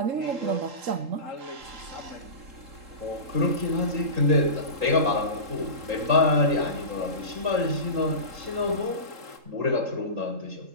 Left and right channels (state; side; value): late; left; 3.7 ms